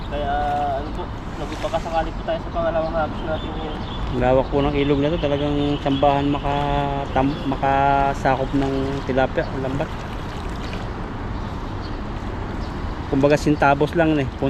Kaya ano po, nagpapakasakali po tayo sa pangalawang hagis natin ngayon. Lawak po ng ilog na to. Talagang sambahan makasakop ng tilapia, lambat. Kumbaga sintabos lang eh.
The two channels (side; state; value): both; identical; correlation 1.00